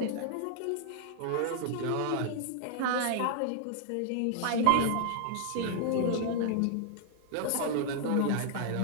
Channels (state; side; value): different; both; correlation -0.01